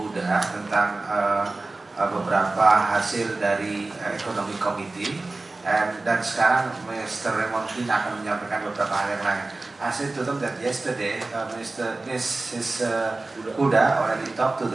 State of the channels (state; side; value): quieter; left; 3.2 dB